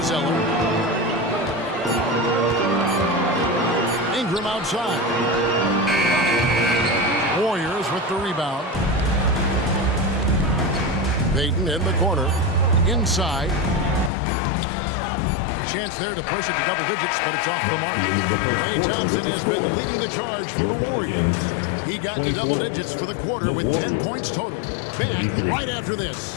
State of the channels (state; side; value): drops out; right; at 14.1 s